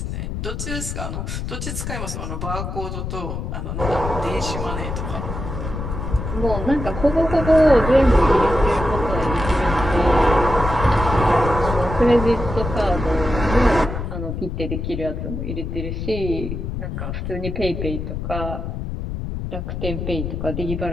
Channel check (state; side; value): noise; left; rumble, 5 dB below the sound